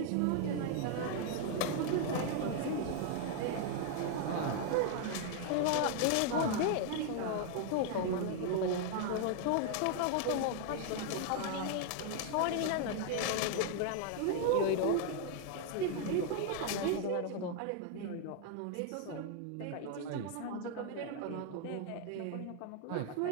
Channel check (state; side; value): different; both; correlation 0.00